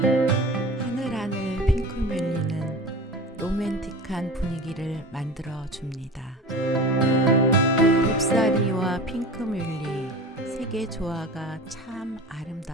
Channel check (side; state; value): both; normal; correlation 0.34